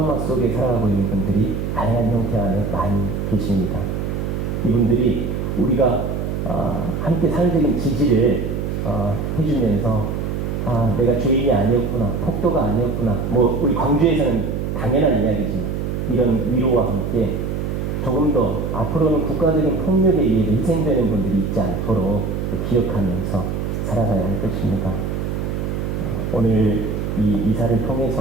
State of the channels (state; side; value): noise; right; hum, 2 dB below the sound